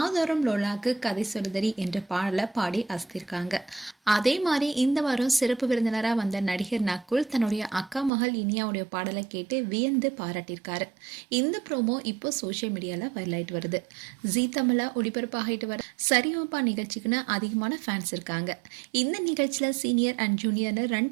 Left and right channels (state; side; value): drops out; left; at 8.1 s